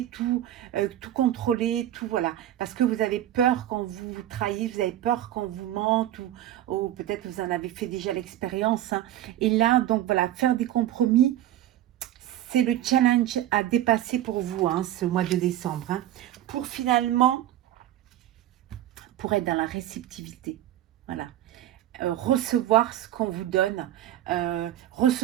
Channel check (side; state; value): left; quieter; 12.9 dB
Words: tout contrôler, tout voilà. Parce que vous avez peur qu'on vous trahisse, vous avez peur qu'on vous mente, ou peut-être vous en avez fait déjà l'expérience. Hein. Et là, donc voilà, faire des compromis, c'est le challenge à dépasser pour vous, hein, ce mois de décembre. Hein, pour finalement, pour être dans la réceptivité. Voilà. Recevoir ce qu'on vous donne,